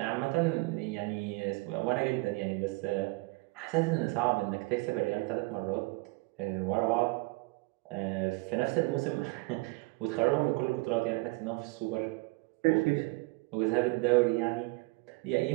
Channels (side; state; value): left; quieter; 25.0 dB